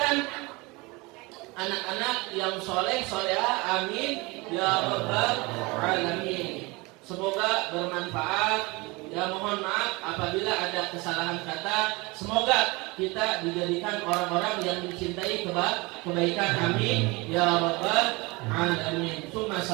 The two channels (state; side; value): quieter; left; 25.0 dB